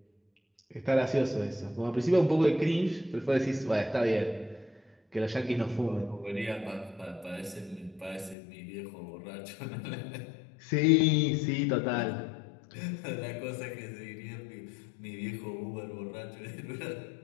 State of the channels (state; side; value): drops out; right; at 8.3 s